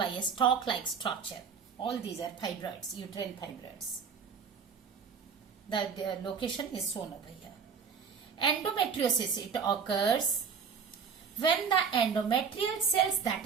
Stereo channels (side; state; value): left; quieter; 6.3 dB